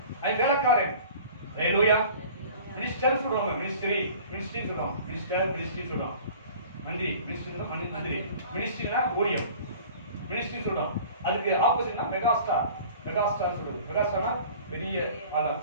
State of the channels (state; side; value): inverted; both; correlation -0.45